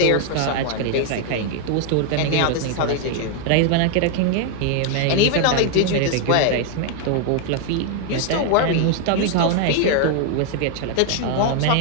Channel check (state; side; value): different; both; correlation 0.00